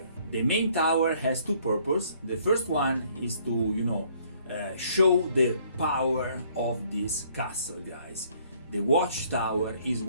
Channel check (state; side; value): inverted; both; correlation -0.62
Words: The main tower has two purposes. The first one is to, show the power of this castle, guys. The watchtower is